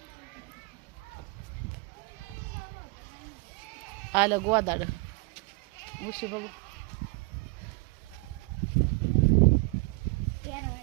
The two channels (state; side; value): quieter; left; 29.2 dB